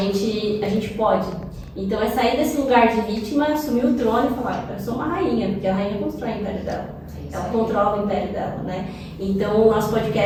A gente pode. Então é sair desse lugar de vítima, assumir o trono e falar, eu sou uma rainha, porque a rainha constrói o império dela. Ela controla o império dela, né? Então o nosso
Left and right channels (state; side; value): identical; both; correlation 1.00